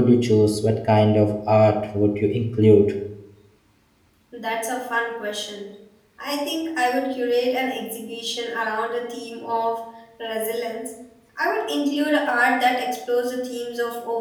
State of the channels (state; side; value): identical; both; correlation 1.00